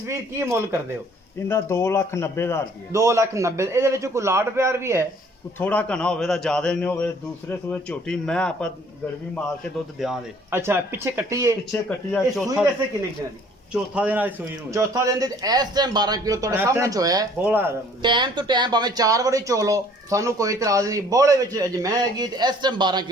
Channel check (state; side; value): normal; both; correlation 0.56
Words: ਕੀ ਮੁੱਲ ਕਰਦੇ ਹੋ ਇਹਦਾ 2,90,000 ਰੁਪਏ। 2,90,000। ਇਹਦੇ ਵਿੱਚ ਕੋਈ ਲਾਡ ਪਿਆਰ ਵੀ ਹੈ? ਥੋੜਾ ਘਣਾ ਹੋਵੇ ਤਾਂ ਜ਼ਿਆਦਾ ਨਹੀਂ ਹੋਵੇ। ਦੂਸਰੇ ਸੂਏ ਝੋਟੀ ਮੈਂ ਆਪਾਂ ਗੜਵੀ ਮਾਰ ਕੇ ਦੁੱਧ ਦਿਆਂ ਦੇ। ਅੱਛਾ ਪਿੱਛੇ ਕੱਟੀ ਹੈ? ਪਿੱਛੇ ਕੱਟੀ ਆ। ਚੌਥਾ ਵੈਸੇ ਕਿੰਨੇ ਦਿਨਾਂ ਦੀ? ਚੌਥਾ ਦਿਨ ਅੱਜ ਸੂਈ ਨੂੰ। ਚੌਥਾ ਦਿਨ ਦੇ ਇਸ ਟਾਈਮ 12 ਕਿਲੋ ਤੁਹਾਡੇ ਸਾਹਮਣੇ ਚ ਹੋਇਆ ਹੈ। ਬੋਲਾ ਟਾਈਮ ਤੋਂ ਟਾਈਮ ਭਾਵੇਂ 4 ਵਾਰੀ ਚੋ ਲਓ, ਸਾਨੂੰ ਕੋਈ ਇਤਰਾਜ਼ ਨਹੀਂ। ਬੋਲੇ ਵਿੱਚ ਅਜ ਮੈਂ ਹੈਗੀ ਤੇ ਇਸ ਟਾਈਮ 12